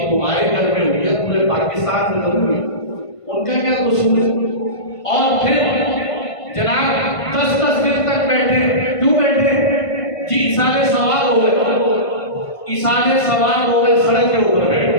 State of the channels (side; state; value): right; late; 1.5 ms